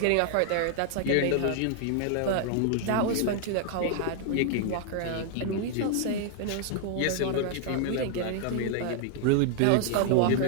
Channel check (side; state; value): both; different; correlation 0.00